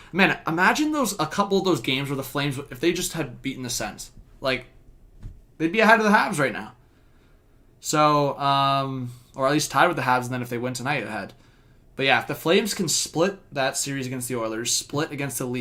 Man, imagine a couple of those games where the Flames, if they just had beaten the Sens. Like, they'd be ahead of the Habs right now. So, or at least tied with the Habs, and then if they win tonight, ahead. But yeah, if the Flames can split that series against the Oilers, split against the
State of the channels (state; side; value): identical; both; correlation 1.00